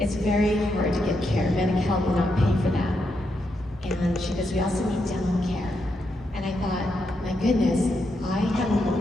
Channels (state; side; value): normal; both; correlation 0.82